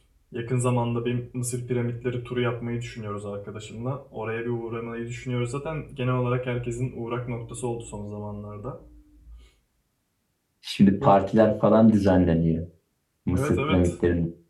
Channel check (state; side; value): identical; both; correlation 1.00